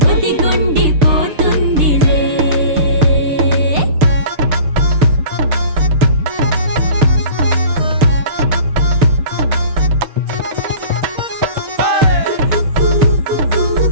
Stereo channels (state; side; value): late; left; 6.7 ms